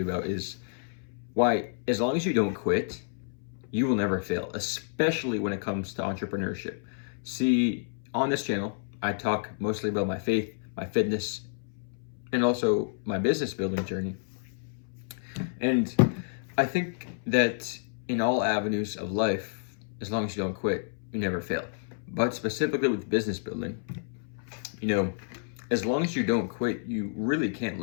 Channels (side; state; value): right; silent; 58 dB below the other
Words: about is why, as long as you don't quit, you will never fail, especially when it comes to entrepreneurship. See, on this channel, I talk mostly about my faith, my fitness, and also my business building journey. And I think that in all avenues of life, as long as you don't quit, you never fail. But specifically with business building, as long as you don't quit, you really can't